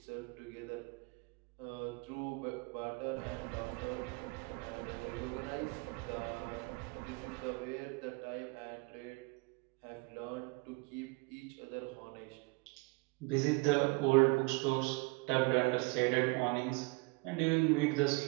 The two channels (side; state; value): left; quieter; 27.0 dB